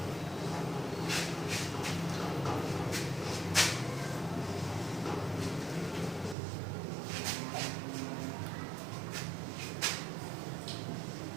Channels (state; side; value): drops out; left; at 6.4 s